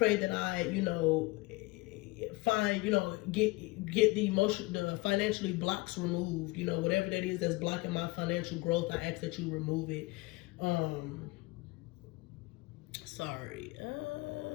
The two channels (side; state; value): right; quieter; 23.4 dB